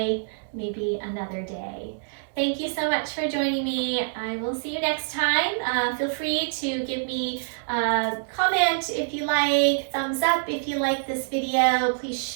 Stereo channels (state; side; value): silent; left; digital silence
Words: maybe another day. Thank you so much for joining me. I will see you next time. Feel free to give me a comment if you like, thumbs up if you like this video. Please